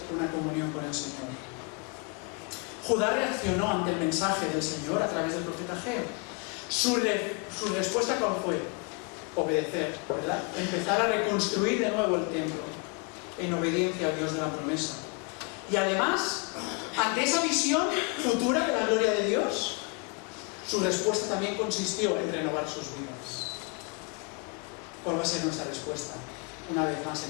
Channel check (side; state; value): right; quieter; 31.9 dB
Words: una comunión con el Señor? Judá reaccionó ante el mensaje del Señor a través del profeta Ageo. Su respuesta, ¿cuál fue? Obedecer, ¿verdad? Empezar a reconstruir de nuevo el templo en obediencia al Dios de la promesa. Y además, ante esa visión futura de la gloria de Dios, su respuesta también consistió en renovar sus vidas. ¿Cuál va a ser nuestra respuesta una vez más